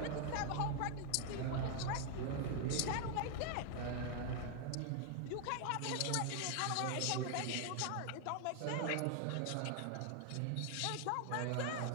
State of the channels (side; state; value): both; different; correlation 0.00